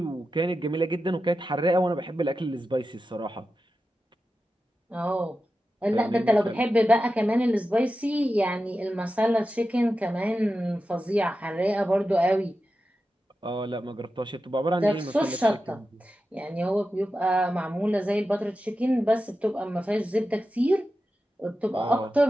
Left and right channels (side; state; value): both; normal; correlation 0.92